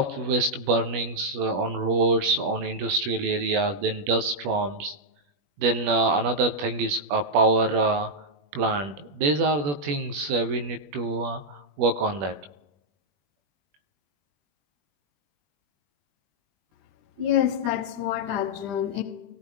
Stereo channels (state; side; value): late; left; 21 ms